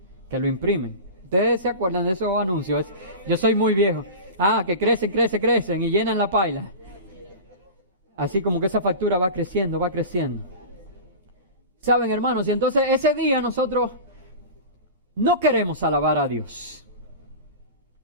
que lo imprimen. ¿Ustedes se acuerdan de esos anuncios? Yo soy muy viejo. Que crecen y llenan la paila. Así como que esa factura va creciendo. ¿Saben, hermanos? Y entonces ese día nosotros no queremos alabar a Dios.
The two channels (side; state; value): both; inverted; correlation -0.31